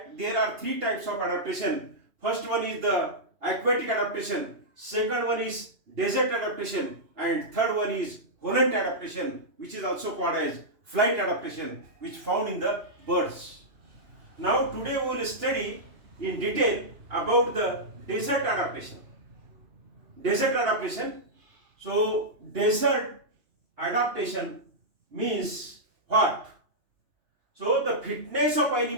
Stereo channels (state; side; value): late; left; 2.9 ms